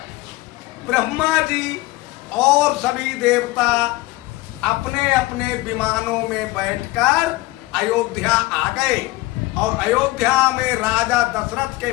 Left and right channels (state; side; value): quieter; right; 19.6 dB